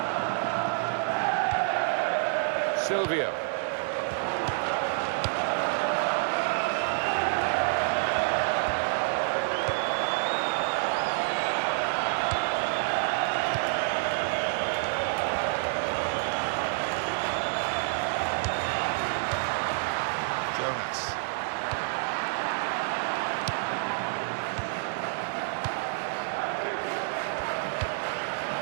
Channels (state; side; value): silent; left; digital silence